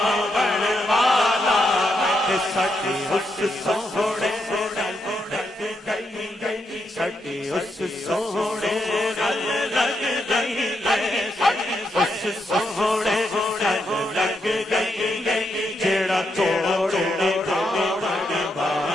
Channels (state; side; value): normal; both; correlation 0.81